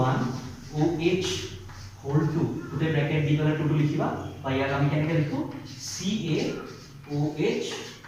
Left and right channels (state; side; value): identical; both; correlation 1.00